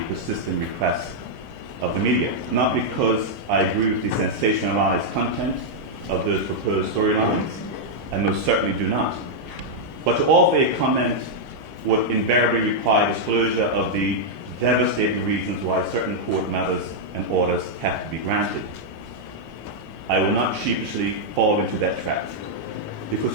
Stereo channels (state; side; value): normal; both; correlation -0.04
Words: persistent requests of the media. Not because I agree with the sensationalized content of those proposed storylines, I most certainly do not. But to offer a comment would invariably require disclosure of the devastating reasons why certain court matters and orders have to be granted. I will not sheepishly fall into that trap, because